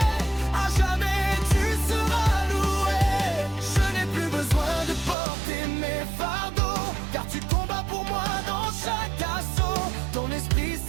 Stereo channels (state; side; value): drops out; left; at 5.2 s